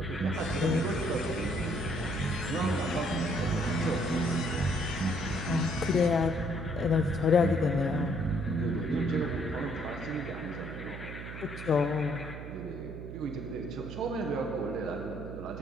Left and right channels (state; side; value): noise; right; hum, 9 dB below the sound